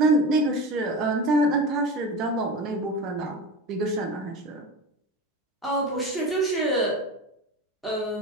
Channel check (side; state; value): both; normal; correlation 0.27